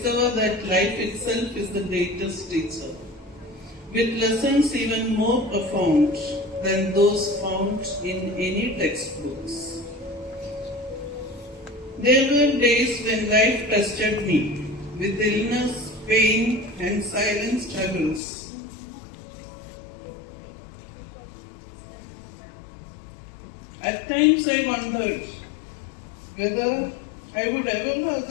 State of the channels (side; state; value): right; drops out; at 18.2 s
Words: that life itself is the greatest teacher, with lessons even more profound than those found in any textbooks. There were days when life tested me with illness, pain and silent struggles. At times I wondered whether I would ever have